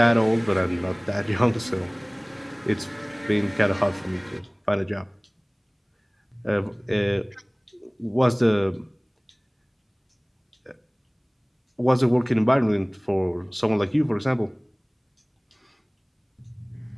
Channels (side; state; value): both; identical; correlation 1.00